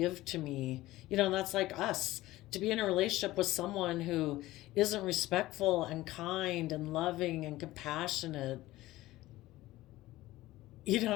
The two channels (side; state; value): right; quieter; 17.1 dB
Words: to me. You know, that's like us. To be in a relationship with someone who isn't respectful and kind and loving and compassionate, you